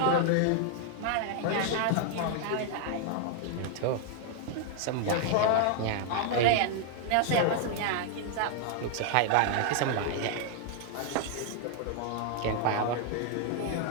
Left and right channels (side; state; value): both; different; correlation 0.00